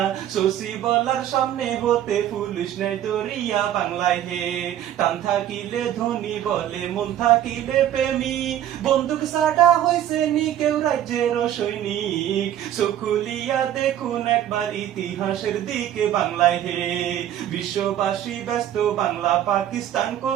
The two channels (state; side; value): quieter; left; 11.3 dB